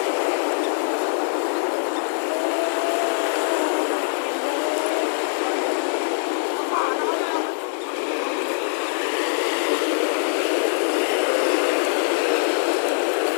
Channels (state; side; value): silent; right; digital silence